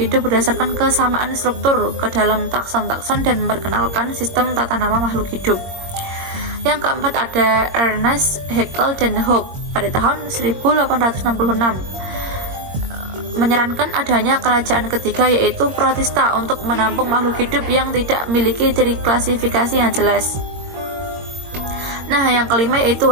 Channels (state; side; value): late; left; 22 ms